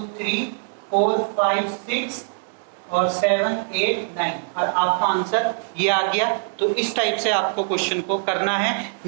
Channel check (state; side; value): silent; left; 64 dB below the other